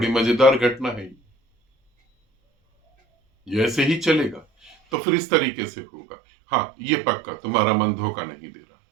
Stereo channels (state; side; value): drops out; left; at 4.8 s